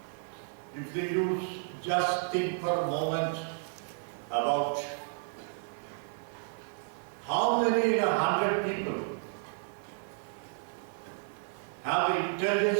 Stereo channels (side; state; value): left; silent; 56 dB below the other